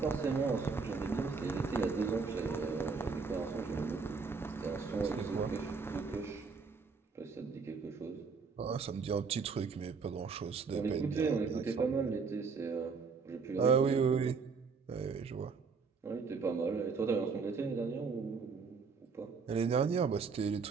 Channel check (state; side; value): quieter; left; 5.0 dB